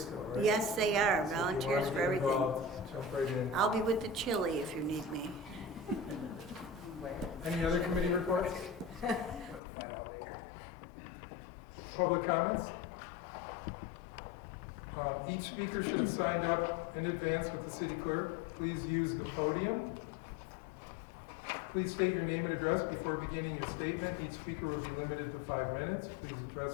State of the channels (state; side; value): drops out; right; at 9.6 s